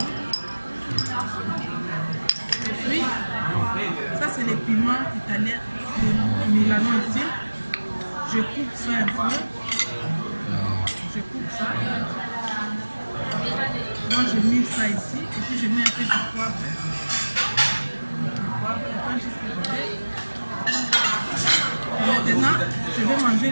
Et puis, ça c'est les piments italiens de Milano ici. Je coupe ça un peu. Je coupe ça. Moi je mets ça ici. Et puis je mets un peu de poivre. Maintenant, je vais manger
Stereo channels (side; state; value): both; inverted; correlation -1.00